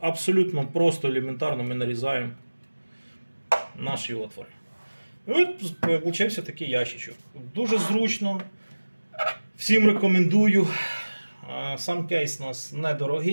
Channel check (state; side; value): inverted; both; correlation -1.00